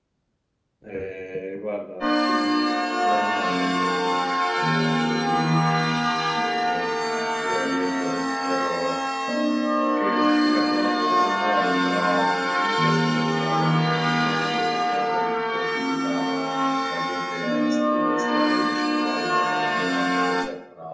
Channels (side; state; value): both; identical; correlation 1.00